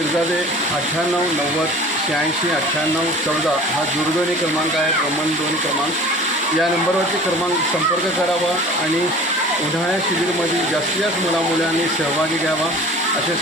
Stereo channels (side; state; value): both; normal; correlation 0.43